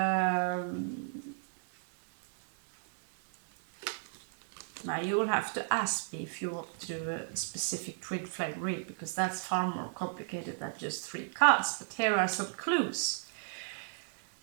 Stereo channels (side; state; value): left; silent; digital silence